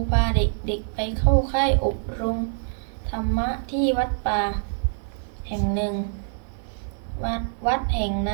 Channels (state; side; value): silent; left; 62 dB below the other